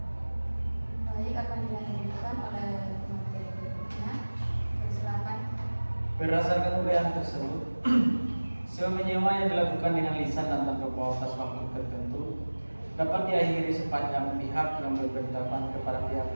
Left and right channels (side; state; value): both; inverted; correlation -1.00